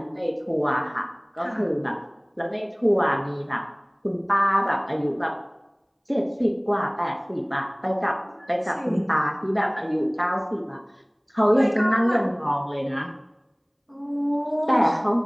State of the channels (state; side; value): identical; both; correlation 1.00